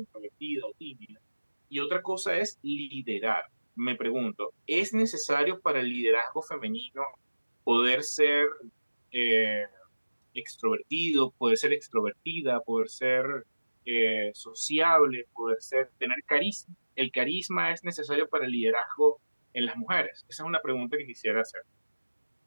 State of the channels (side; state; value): both; inverted; correlation -1.00